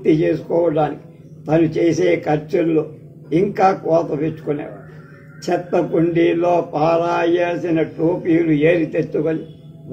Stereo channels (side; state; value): both; identical; correlation 1.00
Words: చేసుకోవడానికి తను చేసే ఖర్చుల్లో ఇంకా కోత పెట్టుకునేవాడు. చెత్త కుండీలో పారాయాల్సిన టోపీలు ఏరి తెచ్చుకొని